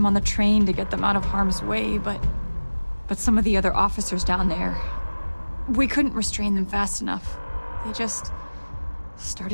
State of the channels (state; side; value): inverted; both; correlation -1.00